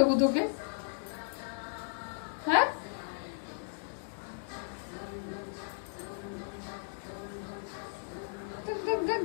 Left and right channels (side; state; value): right; silent; digital silence